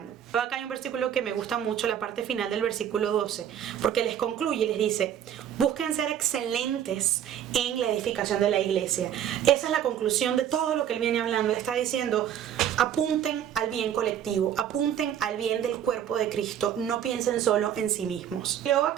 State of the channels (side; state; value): left; quieter; 9.8 dB